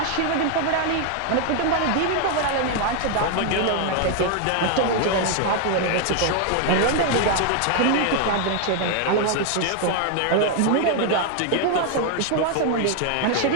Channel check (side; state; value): both; different; correlation 0.00